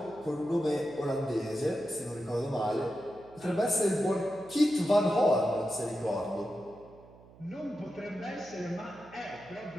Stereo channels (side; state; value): right; noise; hum, 23 dB below the sound